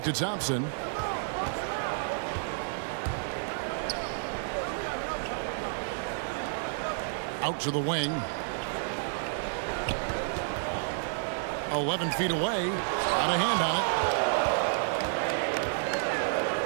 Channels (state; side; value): silent; left; digital silence